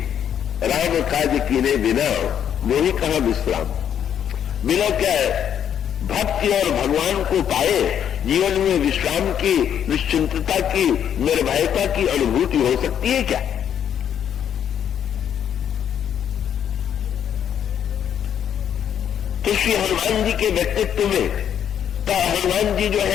राम काज कीने बिना मोही कहां विश्राम। बिना क्या है भक्ति और भगवान को पाए जीवन में विश्राम की, निश्चिंतता की, निर्भयता की अनुभूति हो सकती है क्या। तो श्री हनुमान जी के व्यक्तित्व में तो हनुमान जी जो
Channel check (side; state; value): right; quieter; 9.2 dB